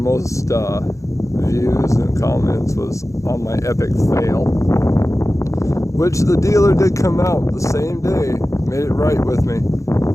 views and comments was on my epic fail, which the dealer did come out the same day, made it right with me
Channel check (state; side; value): late; right; 0.15 ms